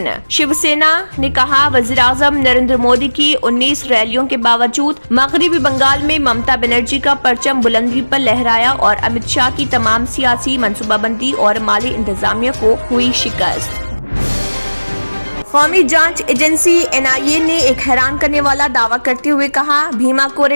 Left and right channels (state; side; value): inverted; both; correlation -1.00